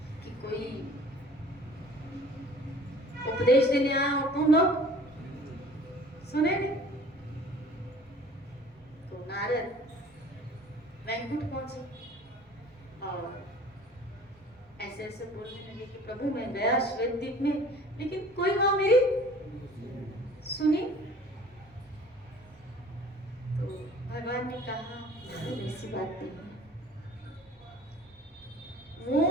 कि कोई उपदेश देने आया और तुम लोग सुने नहीं। तो नारद वैकुंठ पहुंचे और ऐसे ऐसे बोलने लगे कि प्रभु मैं गया श्वेत द्वीप में, लेकिन कोई वहां मेरी सुनी। तो भगवान ने कहा ऐसी बात नहीं है,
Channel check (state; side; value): normal; both; correlation 0.48